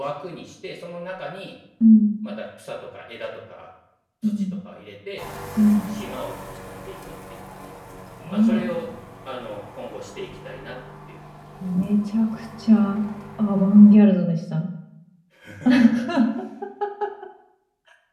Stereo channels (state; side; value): identical; both; correlation 1.00